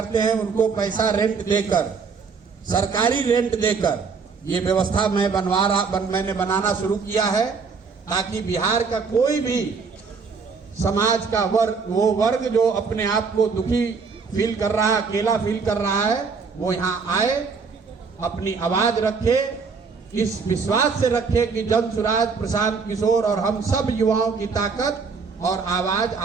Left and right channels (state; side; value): quieter; left; 5.1 dB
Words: हैं उनको पैसा रेंट देकर, सरकारी रेंट देकर ये व्यवस्था मैंने बनाना शुरू किया है ताकि बिहार का कोई भी समाज का वर्ग जो अपने आप को दुखी फील कर रहा है, अकेला फील कर रहा है, वो यहाँ आए, अपनी आवाज रखे, इस विश्वास से रखे कि जन सुराज, प्रशांत किशोर और हम सब युवाओं की ताकत और आवाज